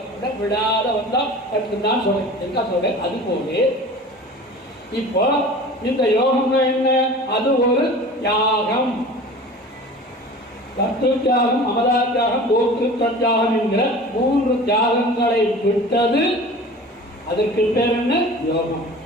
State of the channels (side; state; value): both; normal; correlation 0.40